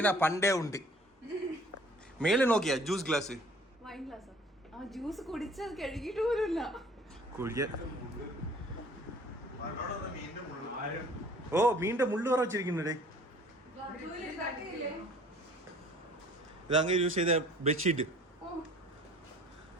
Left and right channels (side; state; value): both; normal; correlation 0.51